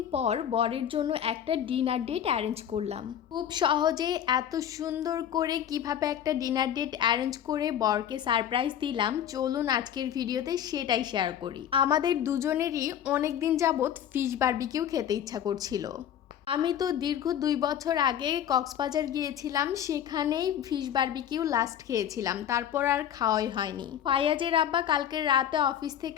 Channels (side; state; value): right; quieter; 9.9 dB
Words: পর বরের জন্য একটা ডিনার ডেট অ্যারেঞ্জ করলাম। খুব সহজে এত সুন্দর করে কিভাবে একটা ডিনার ডেট অ্যারেঞ্জ করে বরকে সারপ্রাইজ দিলাম, চলুন আজকের ভিডিওতে সেটাই শেয়ার করি। আমাদের দুজনেরই অনেক দিন যাবৎ ফিশ বারবিকিউ খেতে ইচ্ছা করছিল। আমি তো দীর্ঘ 2 বছর আগে কক্সবাজার গিয়েছিলাম, সেখানেই ফিশ বারবিকিউ লাস্ট খেয়েছিলাম, তারপর আর খাওয়াই হয়নি। ফায়াজের আব্বা কালকে রাতে অফিস